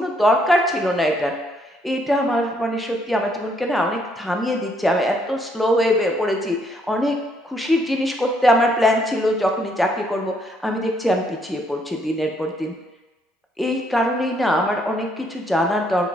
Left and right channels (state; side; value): normal; both; correlation 0.70